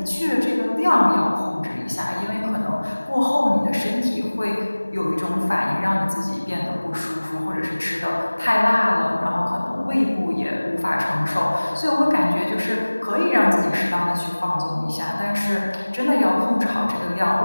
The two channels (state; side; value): inverted; both; correlation -1.00